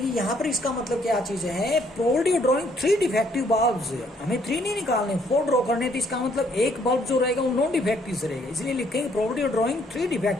यहाँ पर इसका मतलब क्या चीज है, probability of drawing 3 defective bulbs, हमें 3 नहीं निकालने 4 ड्रॉ करने, तो इसका मतलब एक बल्ब जो रहेगा वो नॉन डिफेक्टिव से रहेगा, इसलिए लिखेंगे probability of drawing 3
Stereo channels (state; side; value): normal; both; correlation 0.67